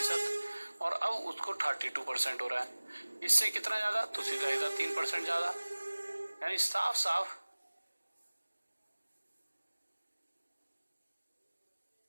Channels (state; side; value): inverted; both; correlation -1.00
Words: और अब उसको 32% हो रहा है, इससे कितना ज्यादा? तो सीधा सीधा 3% ज्यादा। यानी साफ साफ